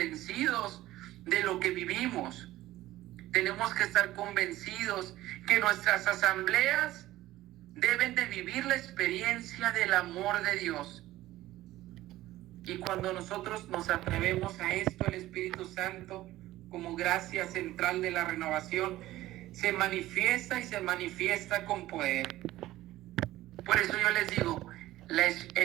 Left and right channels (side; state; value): left; quieter; 15.8 dB